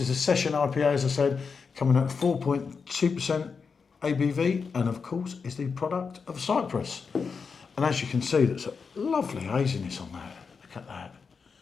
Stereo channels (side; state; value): right; quieter; 5.4 dB